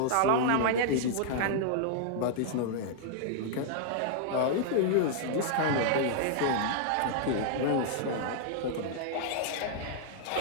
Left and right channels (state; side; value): different; both; correlation -0.01